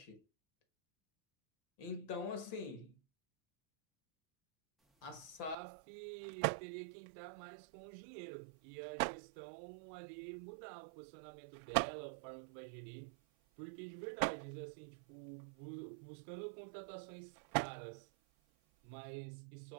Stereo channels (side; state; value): left; drops out; at 5.6 s